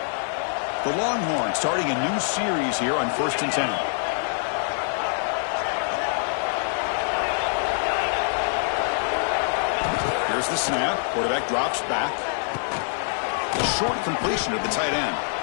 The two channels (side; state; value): right; silent; digital silence